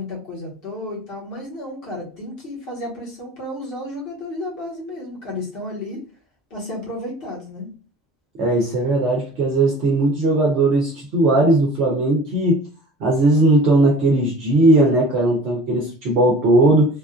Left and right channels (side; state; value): both; normal; correlation 0.44